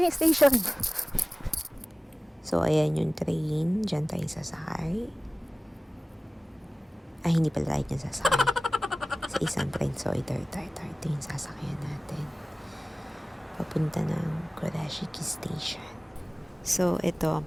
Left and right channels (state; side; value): normal; both; correlation 0.98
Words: yung station. So, ayan yung train. Diyan tayo sasakay. Ay, hindi pala tayo dyan sasakay. Sa isang train. So, ito yung sasakyan natin. Papunta ng Kurashiki Station. So, ito